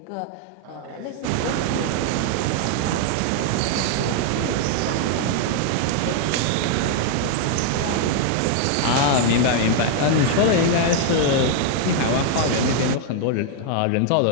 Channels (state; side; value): different; both; correlation 0.00